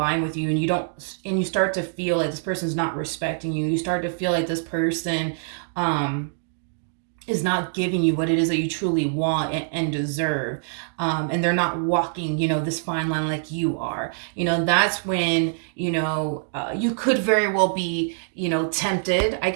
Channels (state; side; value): silent; left; digital silence